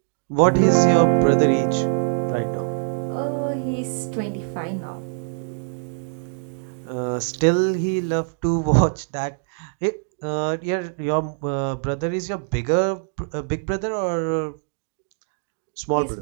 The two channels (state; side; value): silent; left; digital silence